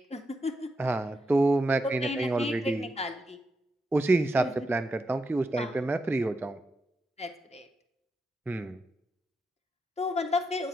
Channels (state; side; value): normal; both; correlation 0.84